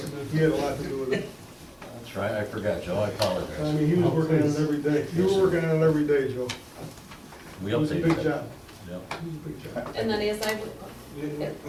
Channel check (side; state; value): both; identical; correlation 1.00